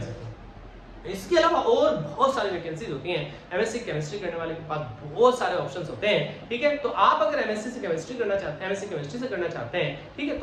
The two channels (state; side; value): identical; both; correlation 1.00